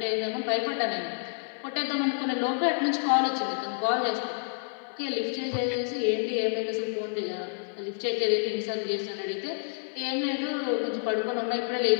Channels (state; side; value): silent; right; digital silence